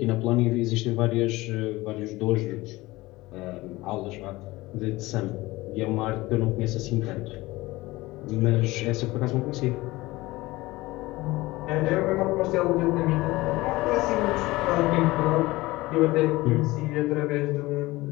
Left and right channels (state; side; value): quieter; right; 19.9 dB